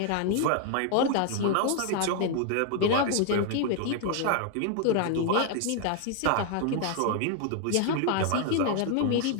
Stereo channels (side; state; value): both; different; correlation 0.00